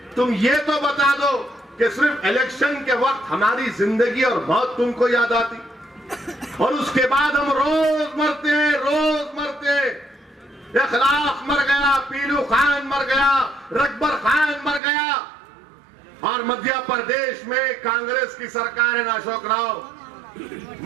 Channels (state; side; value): drops out; left; at 14.8 s